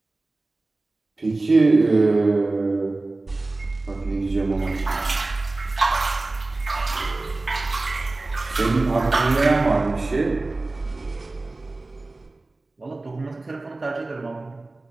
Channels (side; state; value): left; quieter; 3.2 dB